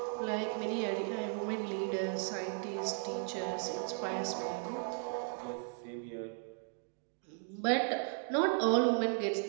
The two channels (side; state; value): left; silent; 54 dB below the other